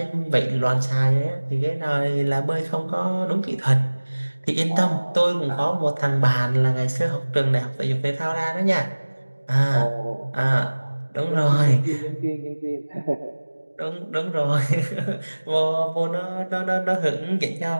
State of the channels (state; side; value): inverted; both; correlation -1.00